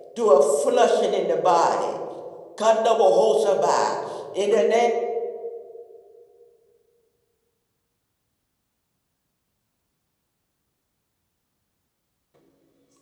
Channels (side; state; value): both; identical; correlation 1.00